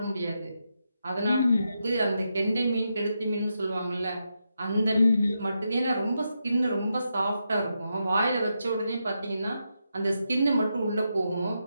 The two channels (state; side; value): inverted; both; correlation -0.85